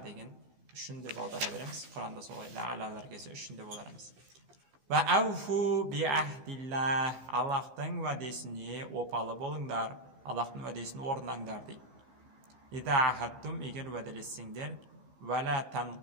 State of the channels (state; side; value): late; left; 16 ms